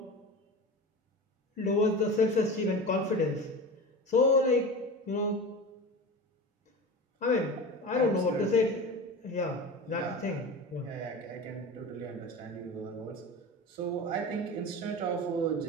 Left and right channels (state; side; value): normal; both; correlation 0.29